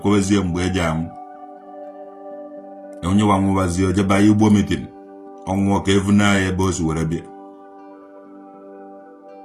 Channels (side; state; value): both; identical; correlation 1.00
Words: mgbe eji amụ onye wa nwụwazie ojeba Igbo meeting ọnwụọ ka evuna ya ebe o si were bịa